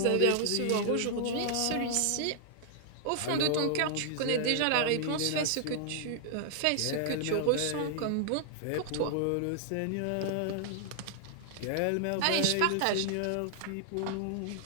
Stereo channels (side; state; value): both; different; correlation 0.00